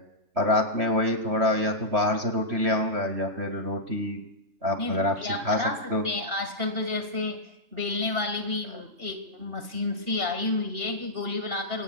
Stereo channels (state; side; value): late; left; 3.4 ms